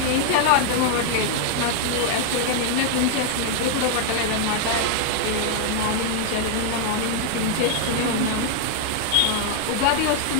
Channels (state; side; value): different; both; correlation 0.00